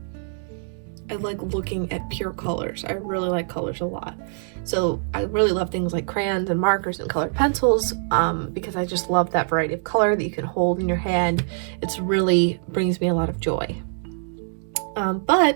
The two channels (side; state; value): left; silent; digital silence